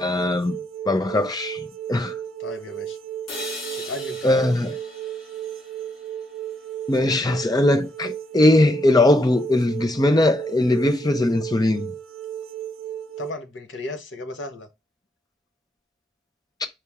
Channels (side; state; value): both; normal; correlation 0.76